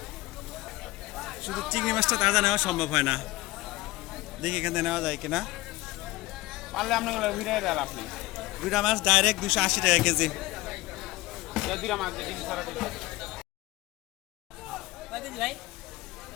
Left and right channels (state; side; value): quieter; right; 18.8 dB